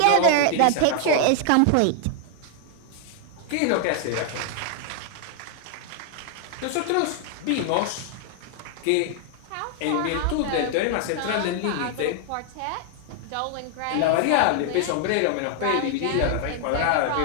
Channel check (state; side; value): different; both; correlation 0.00